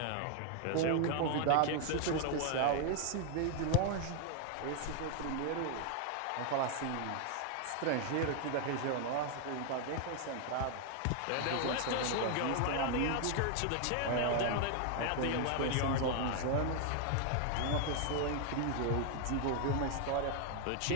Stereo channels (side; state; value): both; different; correlation 0.00